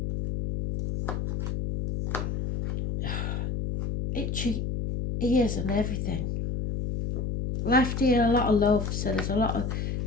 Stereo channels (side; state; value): left; noise; hum, 2 dB below the sound